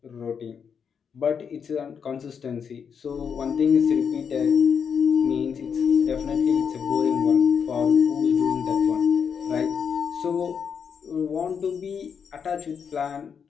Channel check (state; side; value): quieter; right; 6.8 dB